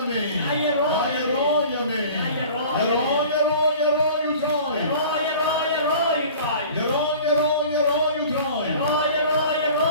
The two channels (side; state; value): both; inverted; correlation -0.43